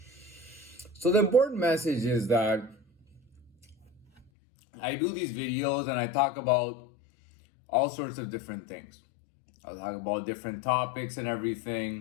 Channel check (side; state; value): right; drops out; at 4.2 s